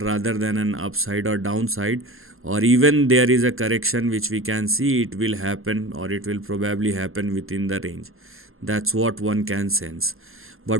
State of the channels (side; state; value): left; late; 0.61 ms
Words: than an upside or downside, or even there is a correction which we can see it will happen, or it will probably happen within the range. That's what one can sense.